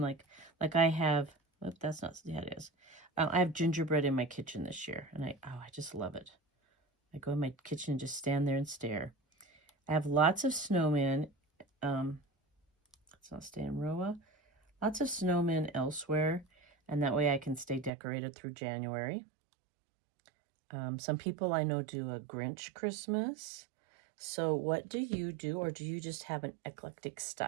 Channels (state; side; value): drops out; left; at 17.9 s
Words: like I have? Oh, that's not, yeah, it is. I have gingerbread in my kitchen this year, and I just love it. I go in my kitchen and just stand there and stare. I have lots of snowmen. Let's not stay in Roa. Lots of snowmen elsewhere, and that way I can stay decorated through January. Some people I know do a Grinch Christmas. So what do you do, or do you just have an eclectic